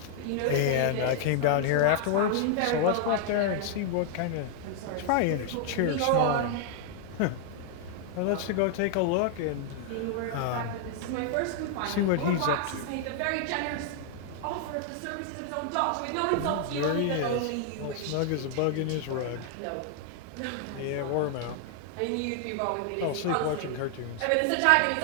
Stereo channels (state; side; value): different; both; correlation 0.00